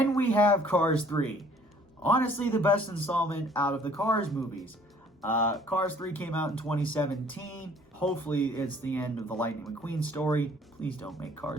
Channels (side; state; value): both; normal; correlation 0.57